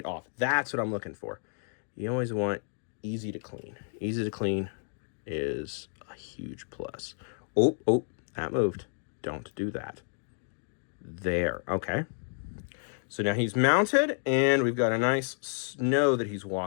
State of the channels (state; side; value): silent; right; digital silence